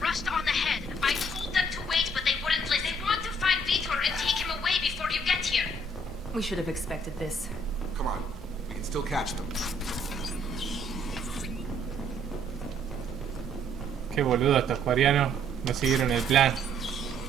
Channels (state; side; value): normal; both; correlation 0.64